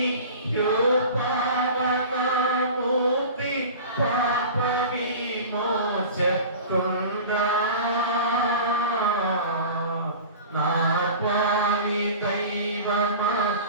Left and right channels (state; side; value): inverted; both; correlation -0.37